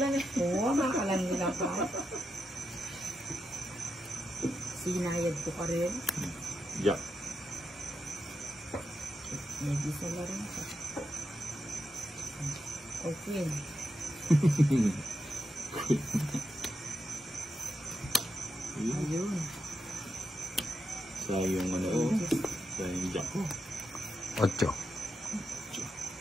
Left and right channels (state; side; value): normal; both; correlation 0.85